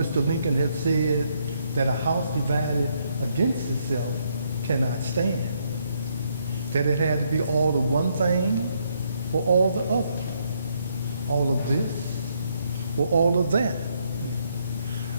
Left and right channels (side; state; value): both; inverted; correlation -0.73